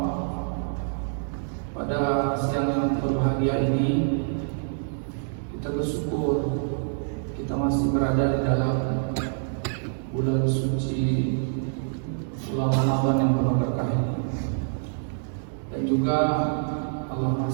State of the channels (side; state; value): left; silent; digital silence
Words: Pada siang yang berbahagia ini, kita bersyukur kita masih berada di dalam bulan suci bulan Ramadan yang penuh berkah ini. Dan juga Allah